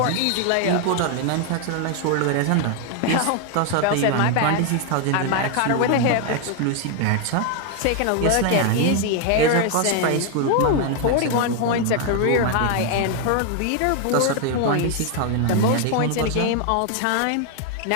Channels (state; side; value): different; both; correlation 0.00